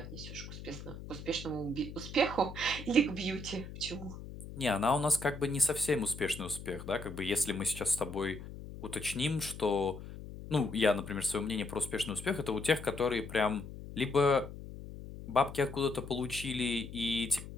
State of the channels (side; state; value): left; noise; hum, 12 dB below the sound